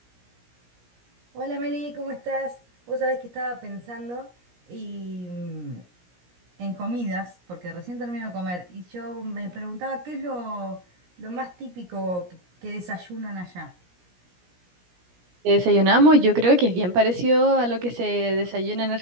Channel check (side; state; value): left; late; 17 ms